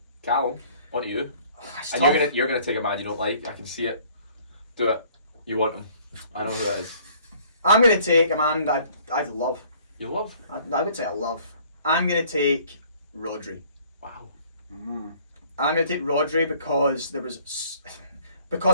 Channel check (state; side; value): inverted; both; correlation -0.57